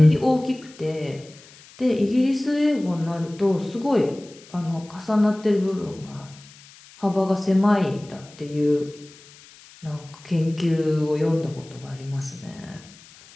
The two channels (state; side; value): noise; left; hiss, 23 dB below the sound